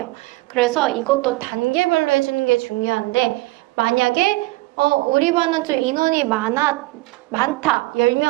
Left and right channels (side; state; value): left; quieter; 21.9 dB